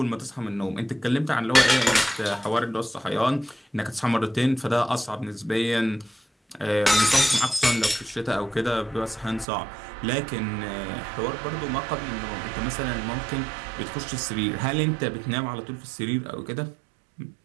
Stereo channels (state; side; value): drops out; left; at 9.5 s